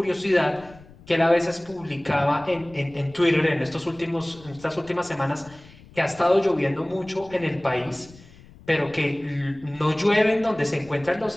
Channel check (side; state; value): left; noise; rumble, 23 dB below the sound